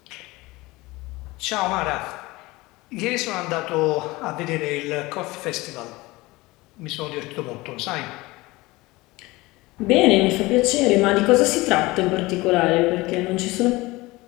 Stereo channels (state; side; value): quieter; right; 21.2 dB